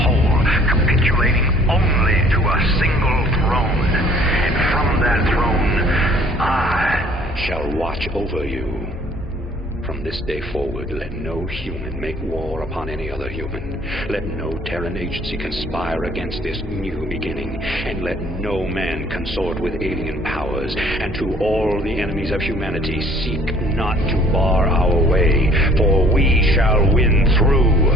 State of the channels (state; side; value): normal; both; correlation 0.56